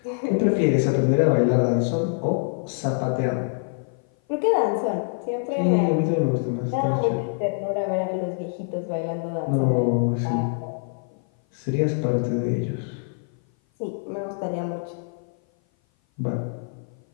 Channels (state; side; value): silent; right; 56 dB below the other